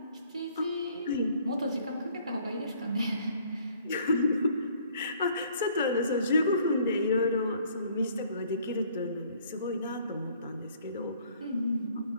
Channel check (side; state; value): both; inverted; correlation -0.59